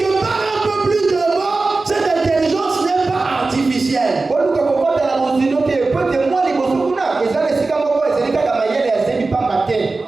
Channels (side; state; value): left; quieter; 3.6 dB